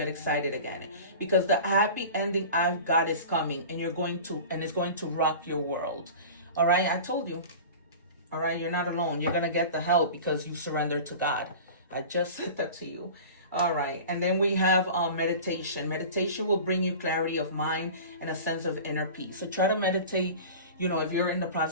excited again. Because the happy ending I've got is coming, and it's going to rock your world. All right, I told you. All right, you're not alone. You're going to get the help because you surrender to God. I just said that to you. All right, and then we have meditation. Meditation will bring you clarity of mind and a sense of inner peace. So try to meditate. You know, if you're in the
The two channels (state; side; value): inverted; both; correlation -0.36